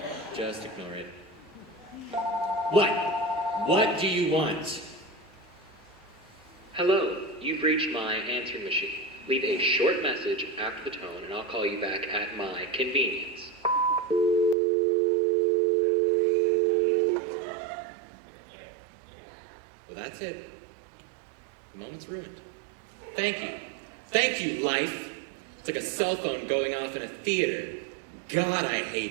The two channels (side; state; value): left; drops out; at 14.6 s